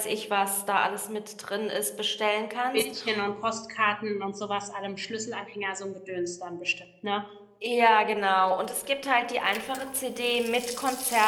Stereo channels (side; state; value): both; identical; correlation 1.00